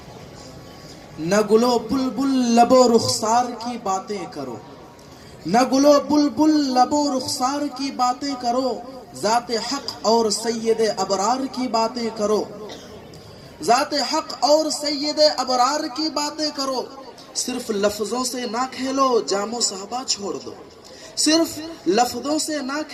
نہ گلو بلبل لب و رخسار کی باتیں کرو، نہ گلو بلبل لب و رخسار کی باتیں کرو، ذات حق اور سید ابرار کی باتیں کرو، ذات حق اور سید ابرار کی باتیں کرو، صرف لفظوں سے نہ کھیلو جام و صحبہ چھوڑ دو، صرف لفظوں سے نہ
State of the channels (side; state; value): both; identical; correlation 1.00